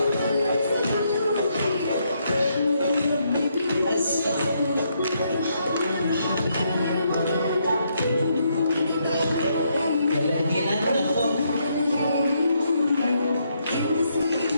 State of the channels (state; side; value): inverted; both; correlation -0.76